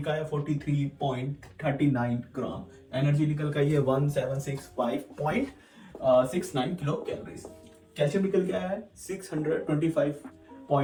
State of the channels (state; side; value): identical; both; correlation 1.00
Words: आया 43.39 ग्राम, एनर्जी निकल गई है 1765.69 किलो कैलोरीज, कैल्शियम निकल गया है